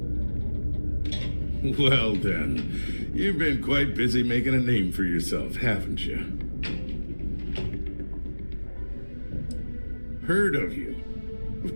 Well then, you've been quite busy making a name for yourself, haven't you? Heard of you.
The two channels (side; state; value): both; inverted; correlation -1.00